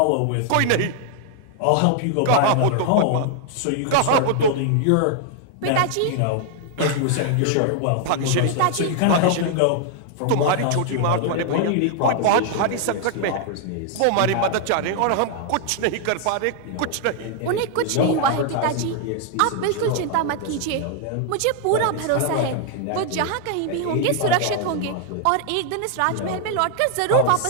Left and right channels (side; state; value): both; different; correlation 0.00